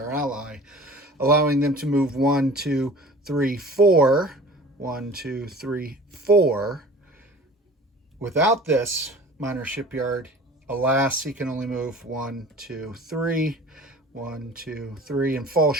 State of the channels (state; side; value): normal; both; correlation 0.43